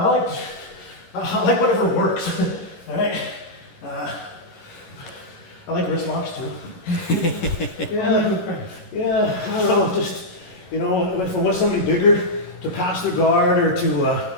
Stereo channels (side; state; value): right; late; 11 ms